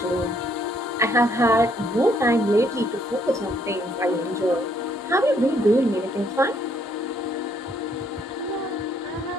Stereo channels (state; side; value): normal; both; correlation 0.68